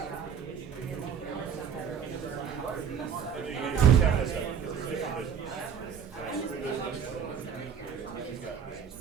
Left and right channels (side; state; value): left; quieter; 7.6 dB